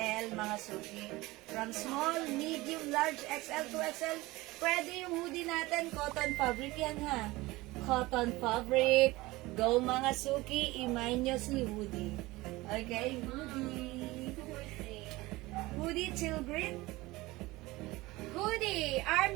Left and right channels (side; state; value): left; quieter; 20.3 dB